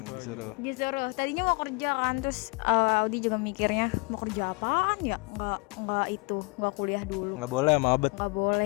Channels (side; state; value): right; quieter; 30.9 dB